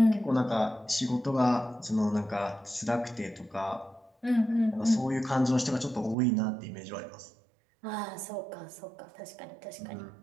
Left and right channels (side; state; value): left; drops out; at 6.2 s